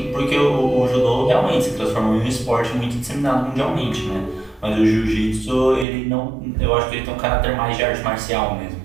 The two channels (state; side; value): drops out; left; at 5.9 s